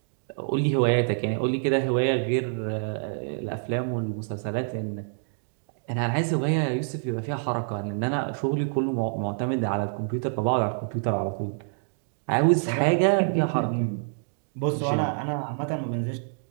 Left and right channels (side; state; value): left; silent; digital silence